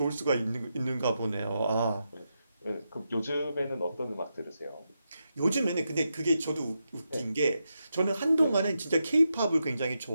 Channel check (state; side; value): inverted; both; correlation -0.86